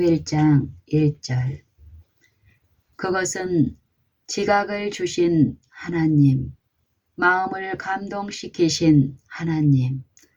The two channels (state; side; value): identical; both; correlation 1.00